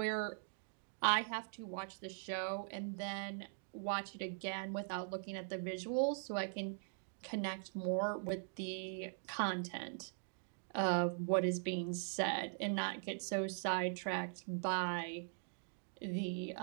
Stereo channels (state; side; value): silent; left; digital silence